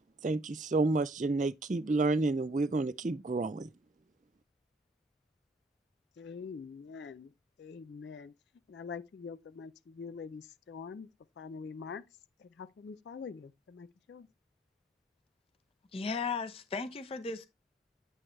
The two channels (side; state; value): both; normal; correlation 0.60